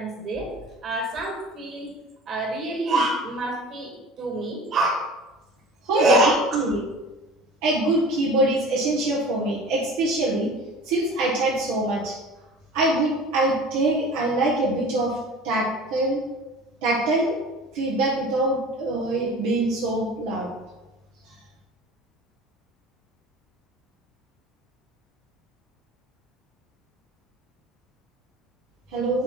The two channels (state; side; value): normal; both; correlation 0.40